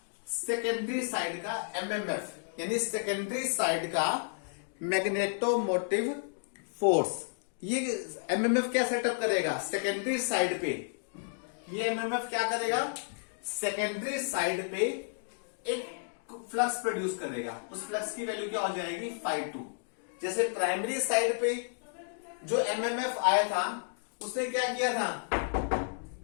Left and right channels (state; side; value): silent; right; digital silence